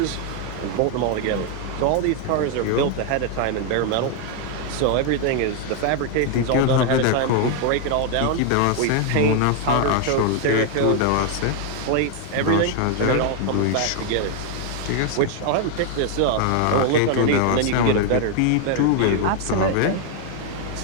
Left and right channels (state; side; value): different; both; correlation 0.00